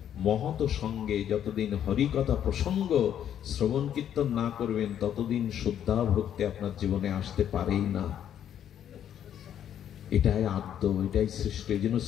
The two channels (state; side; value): quieter; right; 9.9 dB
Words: মহৎ সঙ্গে যতদিন হরি কথা প্রসঙ্গ শ্রবণ কীর্তন না করবেন ততদিন শুদ্ধা ভক্তি আপনার জীবনে আসতে পারেই না। এটাই আদ্য, এটাই সৃষ্টি। এই জন্য